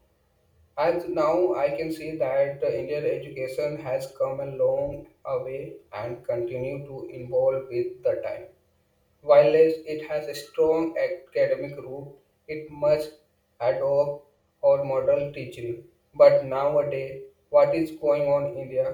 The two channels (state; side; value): identical; both; correlation 1.00